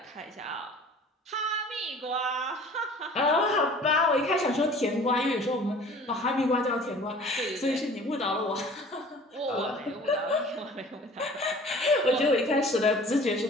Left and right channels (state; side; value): normal; both; correlation 0.47